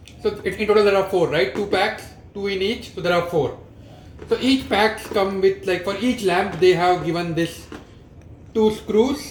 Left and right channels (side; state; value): both; identical; correlation 1.00